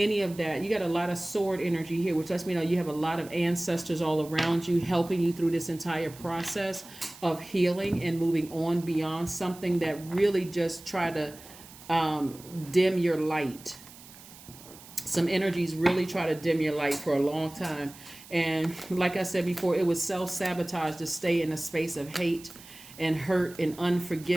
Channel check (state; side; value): noise; right; hiss, 19 dB below the sound